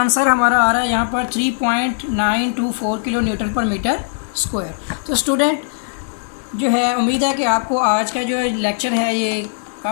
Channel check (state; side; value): silent; right; 56 dB below the other